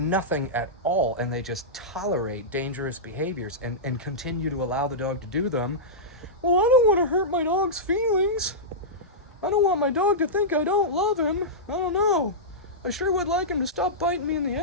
at all, and they just tolerate dangerous behaviors and continue to allow the dog to do them. Well, I don't want to hurt my dog's feelings. I don't want my dog to think I don't love him. I don't know. I sure would like him to stop biting me in the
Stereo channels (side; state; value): both; normal; correlation -0.13